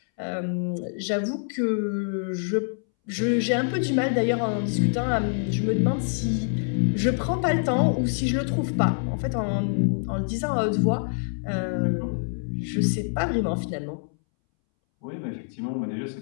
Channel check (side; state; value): right; silent; 61 dB below the other